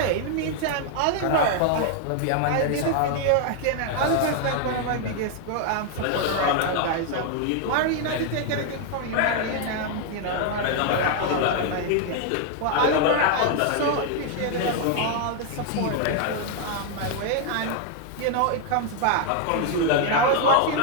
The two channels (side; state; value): both; different; correlation 0.00